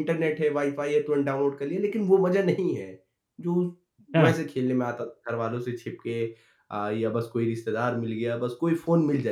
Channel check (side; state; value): both; identical; correlation 1.00